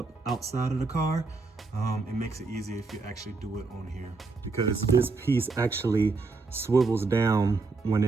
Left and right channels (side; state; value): left; quieter; 3.9 dB